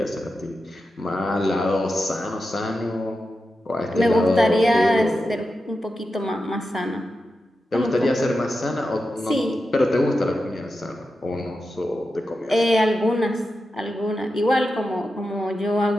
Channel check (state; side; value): normal; both; correlation 0.90